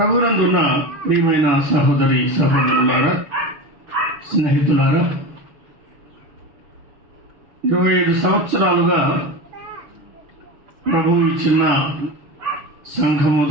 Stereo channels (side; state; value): left; late; 6.3 ms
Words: ప్రియమైన సహోదరి సహోదరులారా, స్నేహితులారా, 25 సంవత్సరాలుగా ప్రభువు ఈ చిన్న సంఘము